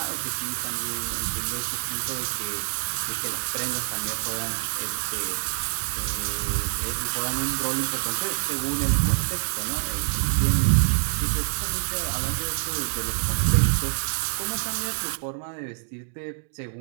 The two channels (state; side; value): silent; left; digital silence